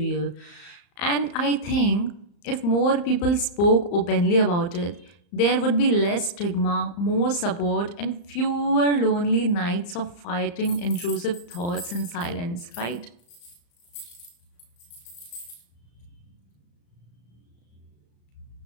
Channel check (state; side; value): late; right; 35 ms